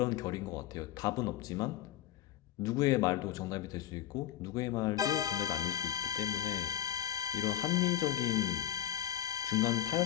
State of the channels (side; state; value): right; quieter; 12.1 dB